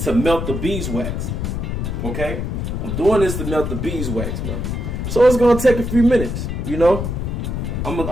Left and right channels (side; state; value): left; noise; rumble, 3 dB below the sound